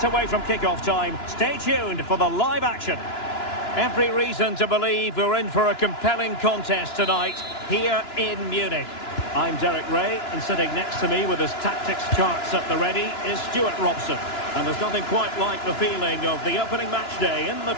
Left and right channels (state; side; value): late; right; 2.9 ms